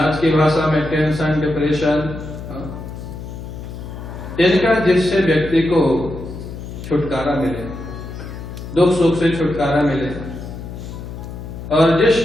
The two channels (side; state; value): left; noise; hum, 10 dB below the sound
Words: की भाषा में टेंशन, डिप्रेशन, इनका जिससे व्यक्ति को छुटकारा मिले, दुख सुख से छुटकारा मिले। और जिस